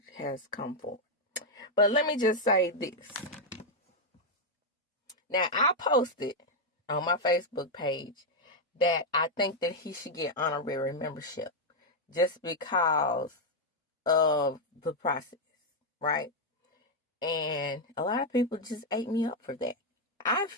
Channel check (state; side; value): normal; both; correlation 0.00